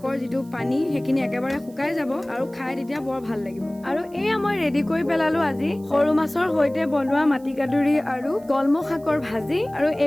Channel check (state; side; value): noise; right; hiss, 27 dB below the sound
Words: যিটো পানী, সেইখিনি একেবাৰে শুকাই যাব, আৰু খাই তেতিয়া বৰ ভাল লাগিব। আৰু এয়া মই ৰেডি কৰি পেলালো আজি সৰু মাছৰ সৈতে বনোৱা মাটিকাদুৰি আৰু কলমৌ শাকৰ ভাজি। আৰু